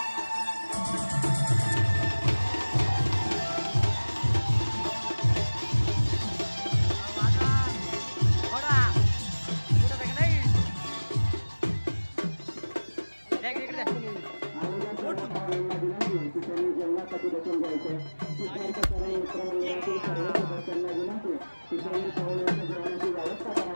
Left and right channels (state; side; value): inverted; both; correlation -1.00